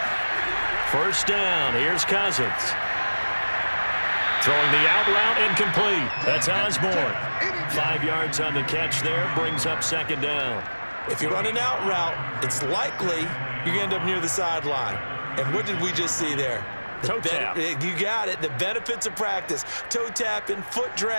First down, here's Cousins. Throwing the out route incomplete. That's Osborne. 5 yards on the catch there, brings up second down. If you run an out route, it's likely you're going to end up near the sideline. And what did we just see there? Toe tap. You got it. The benefits of practice. Toe tapping, foot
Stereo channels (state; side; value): inverted; both; correlation -1.00